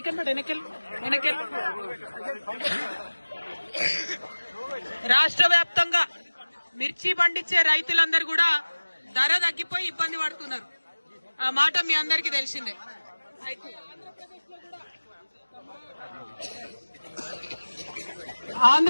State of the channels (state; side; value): inverted; both; correlation -1.00